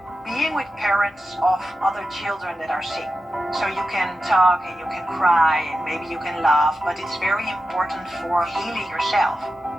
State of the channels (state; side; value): normal; both; correlation 0.91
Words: being with parents of other children that are sick. So you can talk and you can cry and maybe you can laugh, but it's very important for healing yourself.